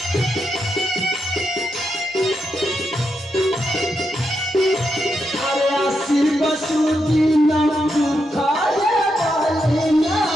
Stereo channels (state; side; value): normal; both; correlation 0.83